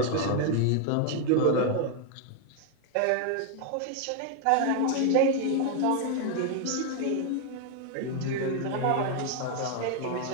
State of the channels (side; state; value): both; different; correlation 0.01